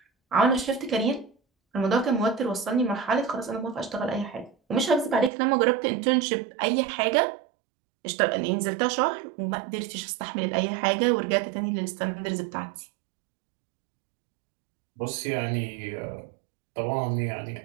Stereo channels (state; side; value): drops out; left; at 5.3 s